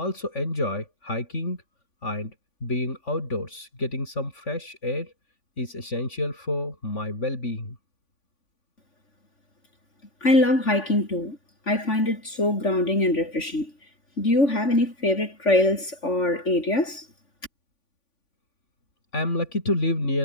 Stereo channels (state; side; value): late; right; 3.5 ms